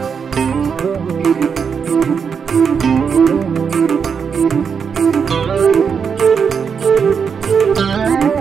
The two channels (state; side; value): quieter; left; 6.4 dB